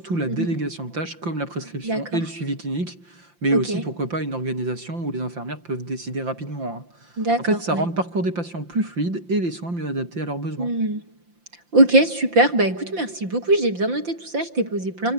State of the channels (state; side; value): late; left; 5.8 ms